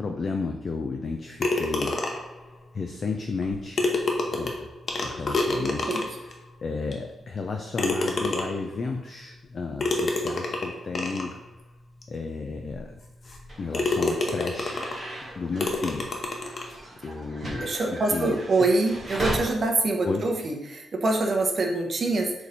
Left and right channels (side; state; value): both; normal; correlation 0.81